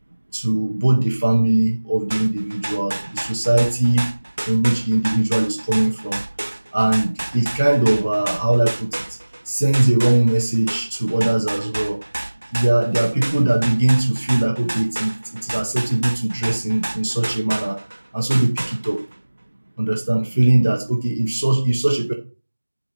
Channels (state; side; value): inverted; both; correlation -1.00